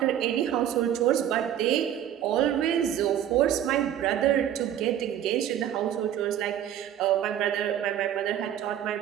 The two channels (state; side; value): quieter; left; 10.6 dB